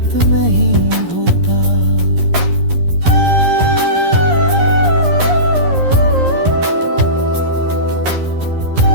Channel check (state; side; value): late; left; 11 ms